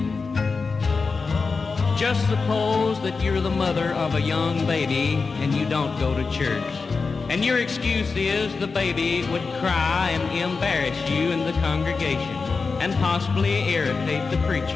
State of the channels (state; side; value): quieter; right; 4.5 dB